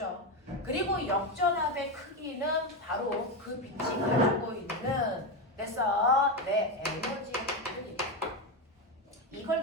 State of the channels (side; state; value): both; normal; correlation 0.12